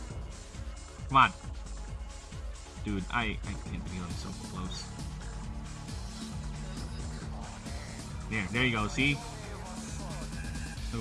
Come on. Dude, I can't be on so close. There you go, see? So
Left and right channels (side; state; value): both; identical; correlation 1.00